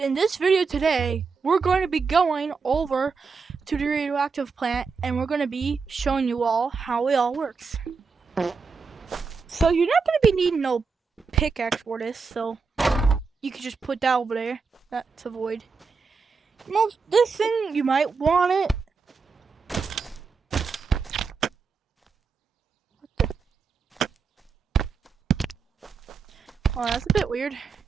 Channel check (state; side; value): quieter; left; 5.1 dB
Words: this video today, we're going to be going over to the radioactive plant and we're going to be showing you all how it all works. So you're not going to be needing no pickaxe for this, so you can just put that over there. That's a void. This thing, you might want it. Oh, that's a bit weird.